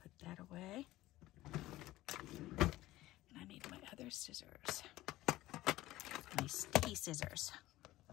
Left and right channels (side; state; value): right; quieter; 16.6 dB